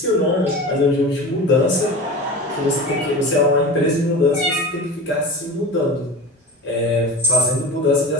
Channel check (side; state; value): both; normal; correlation 0.31